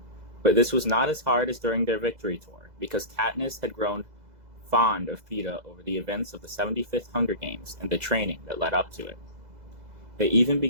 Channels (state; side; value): late; left; 2.0 ms